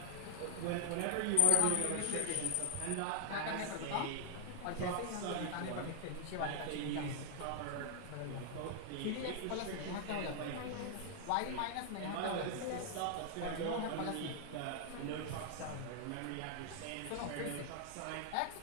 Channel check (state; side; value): different; both; correlation 0.00